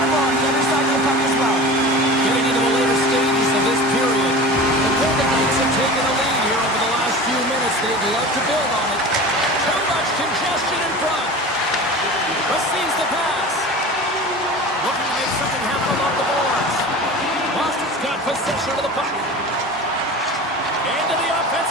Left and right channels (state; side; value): normal; both; correlation 0.35